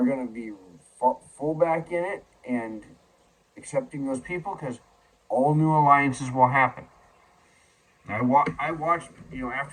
going to be full back in it and accepting those people, because all new alliances will happen. I watched,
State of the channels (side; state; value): both; identical; correlation 1.00